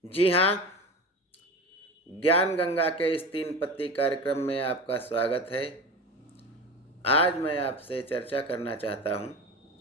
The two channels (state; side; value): normal; both; correlation 0.30